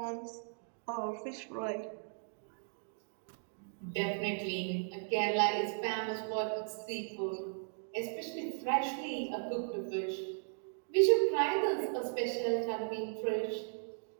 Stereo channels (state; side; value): silent; left; digital silence